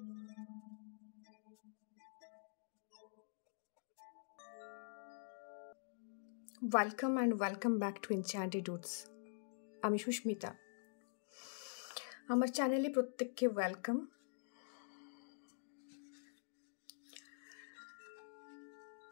Welcome and welcome back to Enchanted Roots. আমি সুস্মিতা। আমার চ্যানেলে প্রত্যেককে ওয়েলকাম।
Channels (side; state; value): right; silent; digital silence